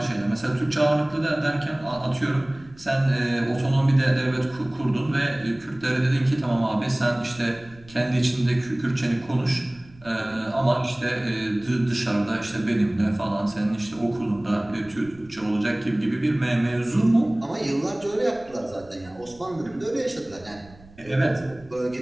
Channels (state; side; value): noise; right; rumble, 24 dB below the sound